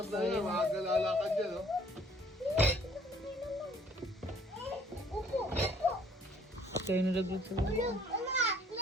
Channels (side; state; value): both; normal; correlation 0.56